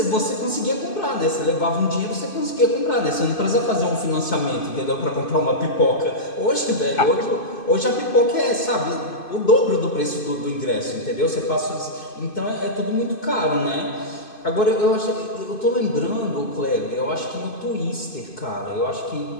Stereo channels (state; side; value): late; right; 2.5 ms